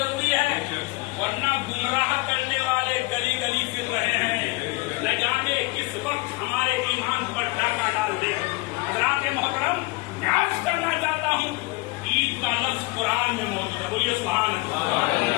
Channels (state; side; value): quieter; right; 24.2 dB